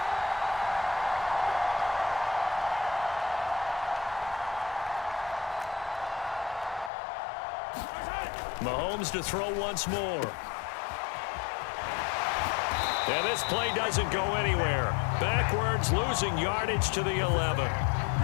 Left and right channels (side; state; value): right; drops out; at 6.9 s